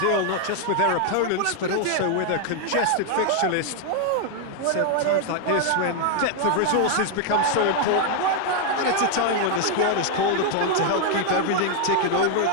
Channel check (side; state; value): both; different; correlation 0.00